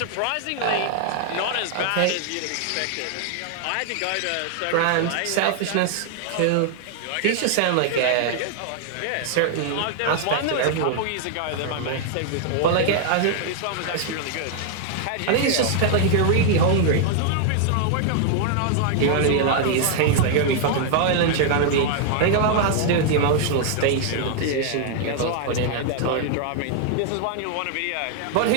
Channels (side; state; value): both; different; correlation 0.00